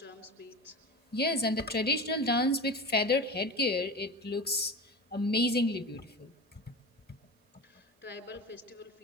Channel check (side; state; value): both; normal; correlation 0.29